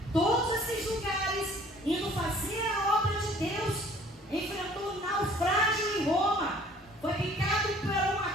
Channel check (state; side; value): normal; both; correlation 0.54